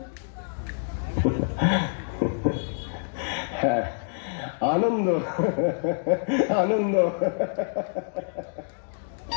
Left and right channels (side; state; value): right; silent; digital silence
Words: হ্যাঁ, আনন্দ আনন্দ।